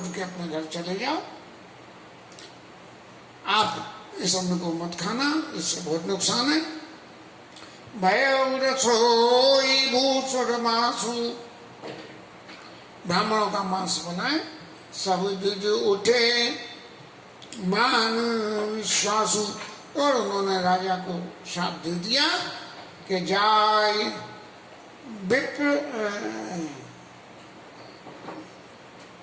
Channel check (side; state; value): both; identical; correlation 1.00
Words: के अपने घर चले जाओ, आप इस अन्न को मत खाना, इससे बहुत नुकसान है। भय रसोई भूषण मासु, ब्राह्मणों का मांस बनाए, सब जुज उठे मान विश्वासु। और उन्होंने राजा को शाप दे दिया कि जाय विप्र